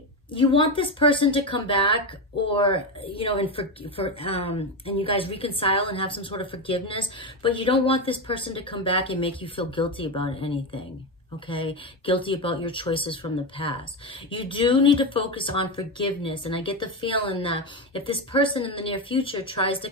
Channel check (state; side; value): normal; both; correlation 0.14